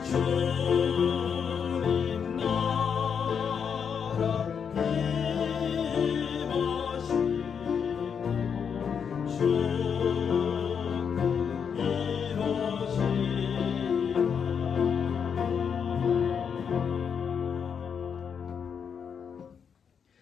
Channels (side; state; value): right; quieter; 7.0 dB